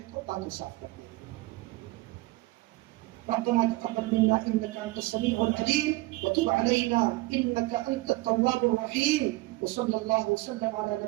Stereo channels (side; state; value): left; quieter; 20.3 dB